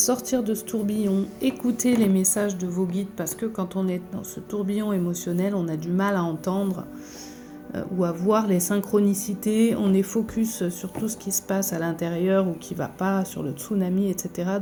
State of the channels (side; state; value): both; identical; correlation 1.00